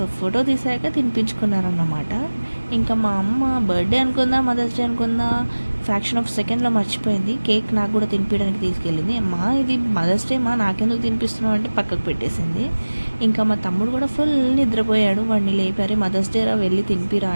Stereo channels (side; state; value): both; inverted; correlation -1.00